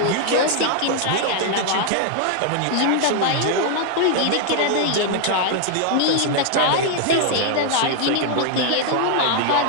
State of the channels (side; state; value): both; different; correlation 0.00